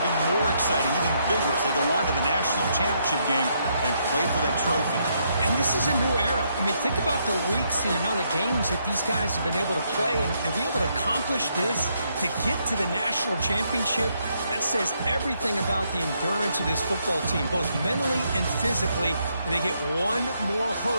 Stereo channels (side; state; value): both; inverted; correlation -0.75